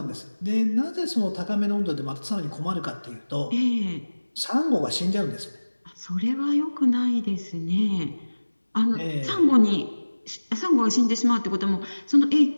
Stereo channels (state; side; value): inverted; both; correlation -1.00